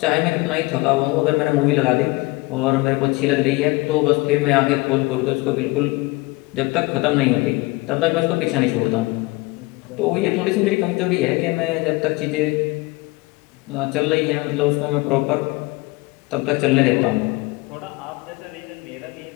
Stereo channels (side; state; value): right; quieter; 23.0 dB